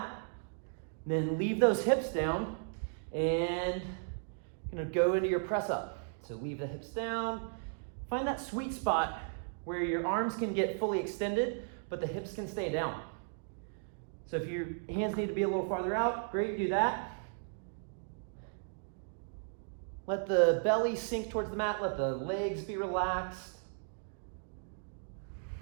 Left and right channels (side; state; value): left; silent; digital silence